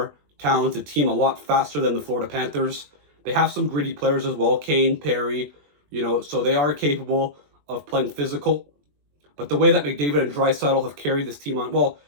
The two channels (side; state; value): left; late; 21 ms